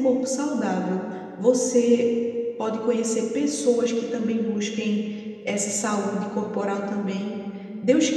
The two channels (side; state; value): both; identical; correlation 1.00